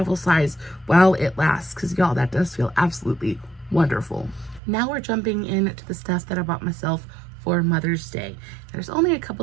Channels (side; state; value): left; drops out; at 4.6 s